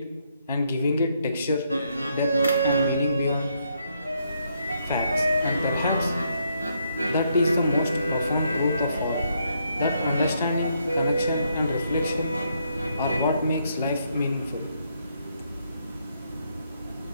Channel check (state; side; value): inverted; both; correlation -0.75